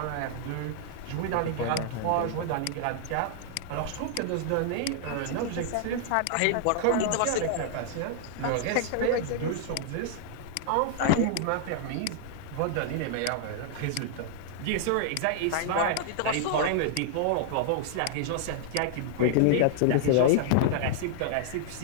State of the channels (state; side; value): different; both; correlation -0.01